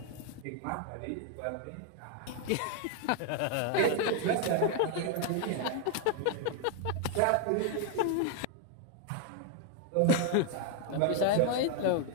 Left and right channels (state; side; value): different; both; correlation 0.00